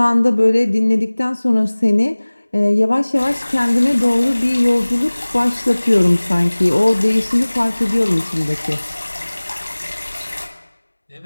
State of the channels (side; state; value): both; inverted; correlation -1.00